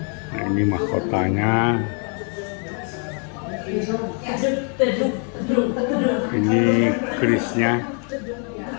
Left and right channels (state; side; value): quieter; right; 39.6 dB